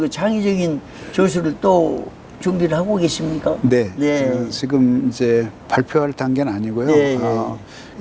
그 창의적인 저술을 또 준비를 하고 계십니까? 네. 지금 이제 발표할 단계는 아니고요. 네.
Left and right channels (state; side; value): identical; both; correlation 1.00